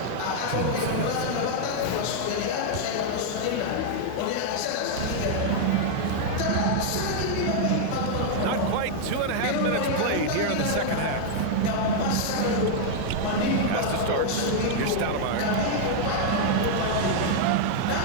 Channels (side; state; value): both; different; correlation 0.00